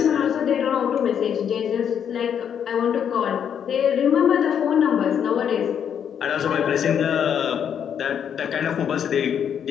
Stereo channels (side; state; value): right; quieter; 8.4 dB